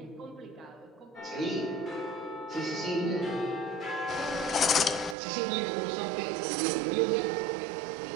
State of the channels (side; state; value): left; drops out; at 5.2 s